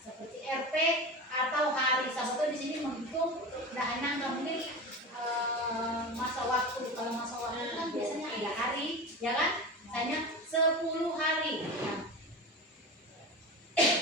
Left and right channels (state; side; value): normal; both; correlation 0.27